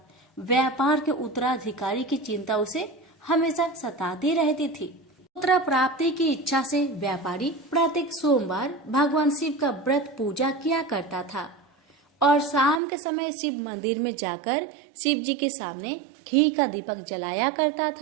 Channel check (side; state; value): left; drops out; at 12.8 s